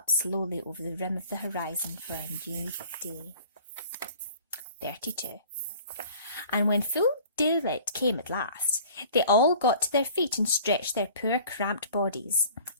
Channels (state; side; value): inverted; both; correlation -0.48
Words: slowly over the rim of the horizon for a new day. 32. And when full daylight came at last, they all got to their feet and stretched their poor cramped bodies.